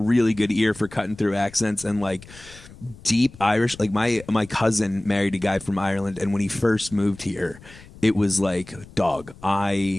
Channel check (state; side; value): noise; left; rumble, 20 dB below the sound